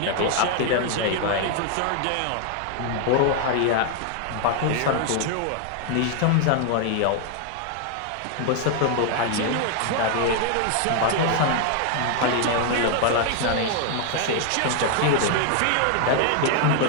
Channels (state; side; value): different; both; correlation 0.00